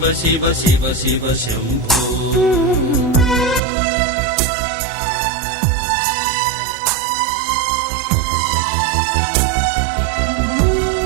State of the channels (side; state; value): left; drops out; at 3.6 s